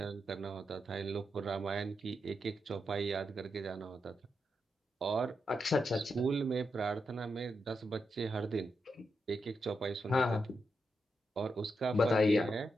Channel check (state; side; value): normal; both; correlation 0.85